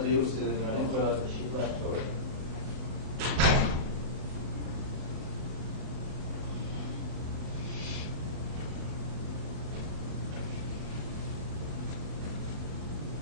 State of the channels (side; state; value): left; late; 39 ms